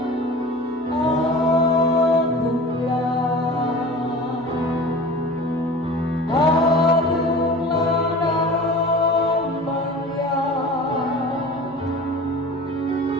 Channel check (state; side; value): noise; right; hum, 28 dB below the sound